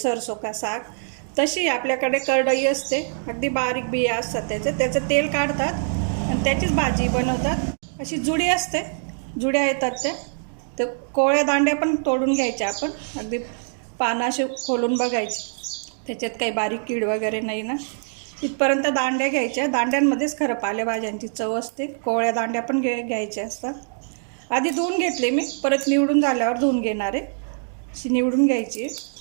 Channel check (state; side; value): silent; left; digital silence